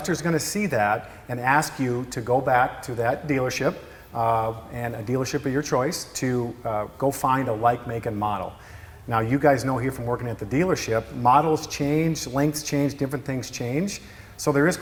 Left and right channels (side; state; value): both; identical; correlation 1.00